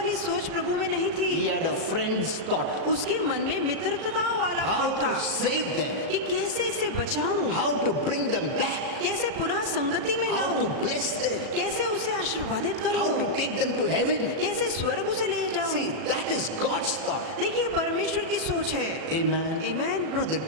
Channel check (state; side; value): late; left; 37 ms